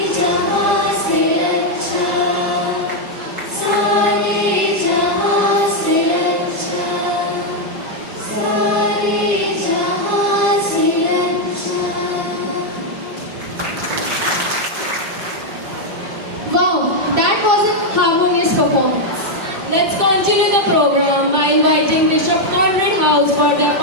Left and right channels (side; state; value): left; late; 5.7 ms